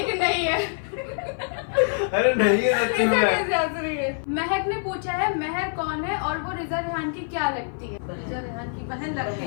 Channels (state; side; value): silent; right; 56 dB below the other